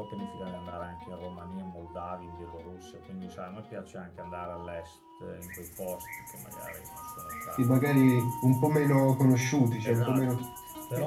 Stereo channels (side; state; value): both; identical; correlation 1.00